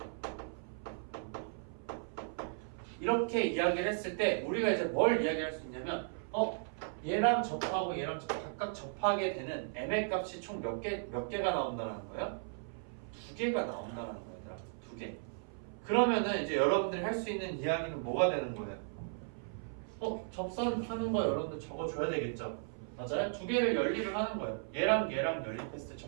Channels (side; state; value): left; silent; 54 dB below the other